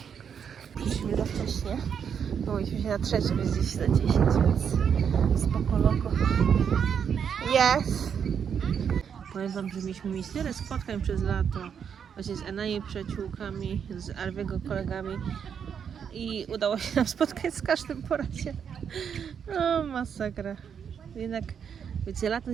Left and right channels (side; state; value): left; quieter; 7.5 dB